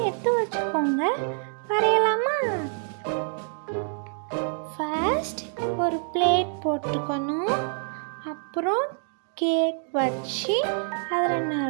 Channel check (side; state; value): left; silent; 61 dB below the other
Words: எடுத்து வச்சுக்கோங்க. வரையலாமா? ஃபர்ஸ்ட் ஒரு பிளேட் போட்டுக்கணும். அப்புறம் கேக் வச்சு அதில்